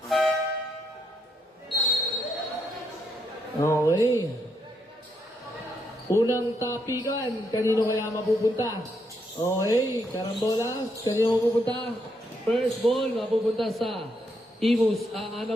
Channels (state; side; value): normal; both; correlation 0.77